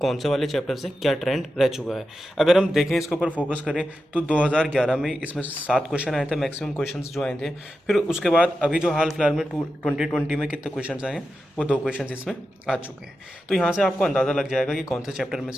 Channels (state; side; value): normal; both; correlation 0.90